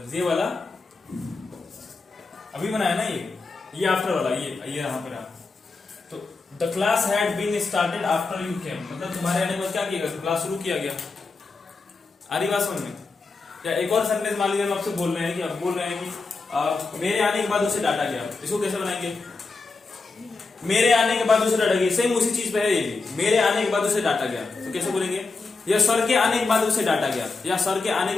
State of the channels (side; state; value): right; quieter; 3.9 dB